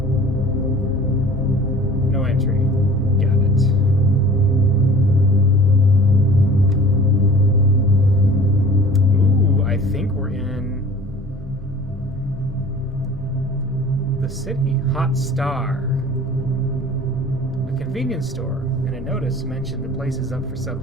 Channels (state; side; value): normal; both; correlation 0.45